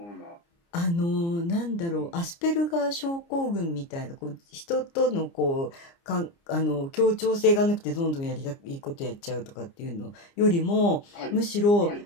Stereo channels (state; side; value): late; right; 29 ms